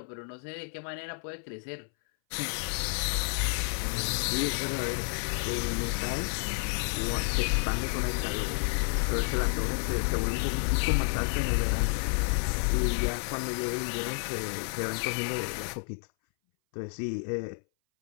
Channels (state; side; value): silent; right; 58 dB below the other